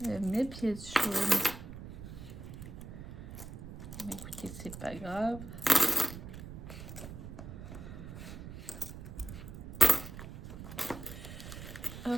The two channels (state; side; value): noise; right; rumble, 11 dB below the sound